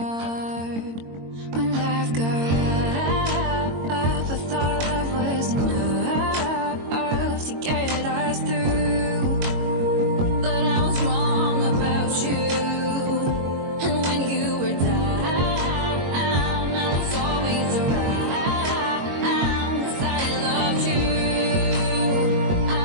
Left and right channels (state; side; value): late; left; 22 ms